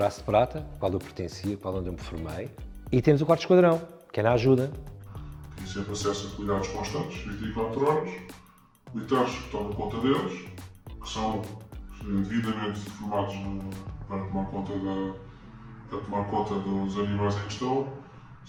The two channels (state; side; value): identical; both; correlation 1.00